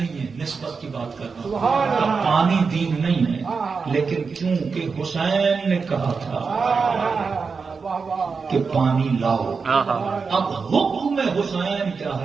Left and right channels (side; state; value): left; quieter; 5.1 dB